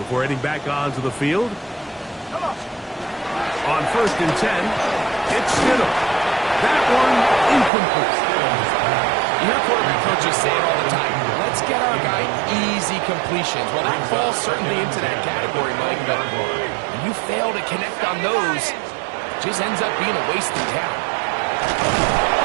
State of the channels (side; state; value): left; drops out; at 7.7 s